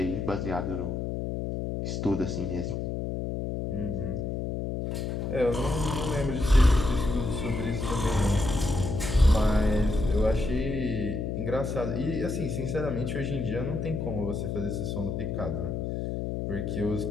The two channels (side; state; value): left; noise; hum, 2 dB below the sound